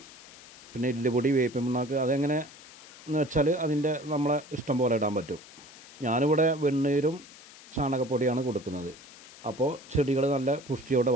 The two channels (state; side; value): noise; left; hiss, 20 dB below the sound